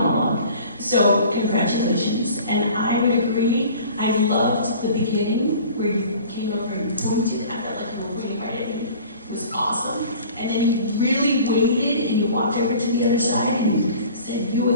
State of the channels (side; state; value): both; inverted; correlation -0.46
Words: So congratulations. And I would agree, I loved the beginning where you came over and pointed. I felt like you were really right at me. It was awesome. And then you really waited and you walked over to the other side and you said